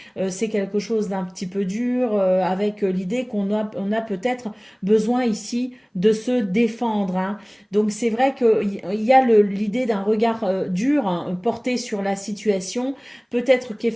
C'est quelque chose d'un petit peu dur, avec l'idée on a peut-être besoin ici de se défendre, hein. Donc c'est vrai qu'il y a l'idée d'un regard dur, hein, porté sur la situation. Peut-être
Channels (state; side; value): identical; both; correlation 1.00